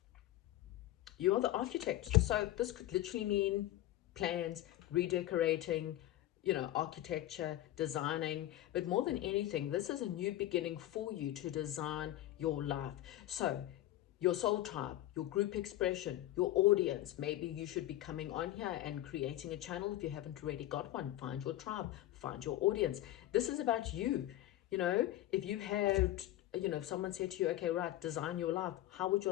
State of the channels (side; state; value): right; quieter; 14.4 dB